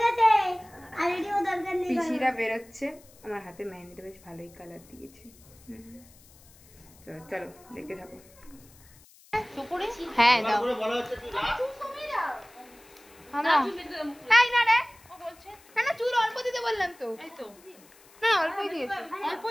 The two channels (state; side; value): noise; left; hiss, 25 dB below the sound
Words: পিসিরা বেরোচ্ছে। আমার হাতে মেহেন্দিটা বেশ ভালোই কালার দিয়েছে। তো চলো দেখতে থাকো। হ্যাঁ দাও। না চুল অল্প দিতে বললাম তো। এই তো না অল্পই দিয়েছে,